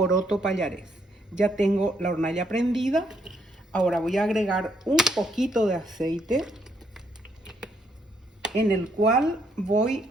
pallarés. Ya tengo la hornalla prendida. Ahora voy a agregar un poquito de aceite en el cual voy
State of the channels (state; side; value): normal; both; correlation 0.72